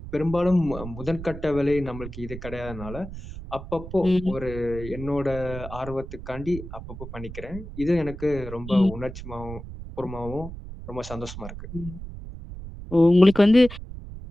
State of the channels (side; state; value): right; noise; rumble, 11 dB below the sound